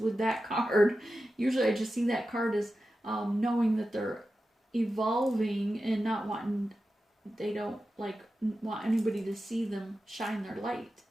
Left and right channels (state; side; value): normal; both; correlation 0.92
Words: that card. Usually I just see that card as knowing that they're evolving and not wanting, they don't want anybody to see them shine their light.